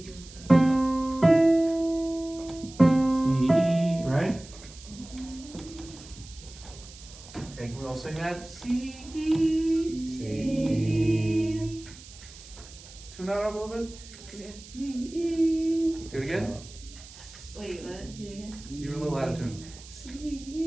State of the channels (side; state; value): right; noise; hiss, 18 dB below the sound